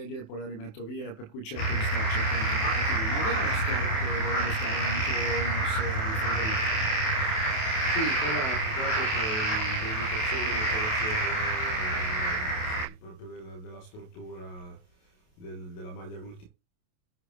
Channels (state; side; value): late; right; 28 ms